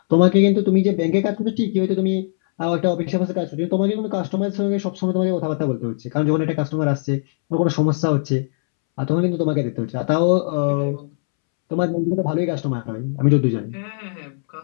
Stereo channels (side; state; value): right; silent; 66 dB below the other